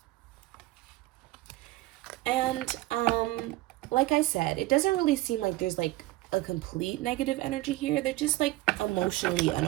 And like I said, it doesn't really seem like there's like a complete negative energy here. They're just like emotionally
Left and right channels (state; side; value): quieter; left; 18.4 dB